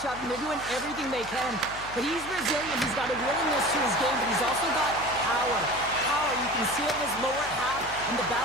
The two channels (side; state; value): left; noise; hum, 16 dB below the sound